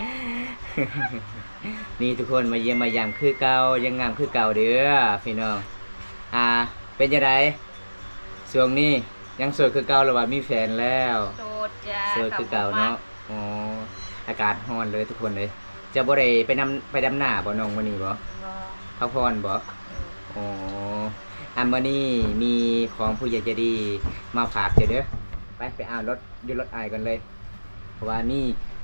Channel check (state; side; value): inverted; both; correlation -1.00